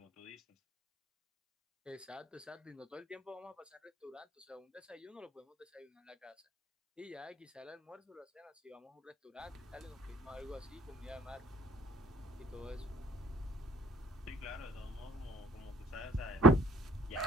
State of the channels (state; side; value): normal; both; correlation 0.58